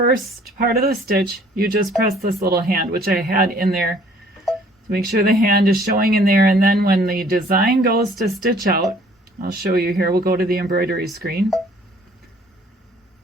part of the stitch, you just press this little hand, which I had in there to make sure the hand is showing in there. And then when the design goes to stitch out, I'll show you here, we'll go to the embroidery screen.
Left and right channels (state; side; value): normal; both; correlation 0.57